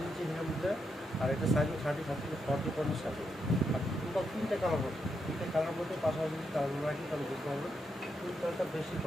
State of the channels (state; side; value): normal; both; correlation 0.82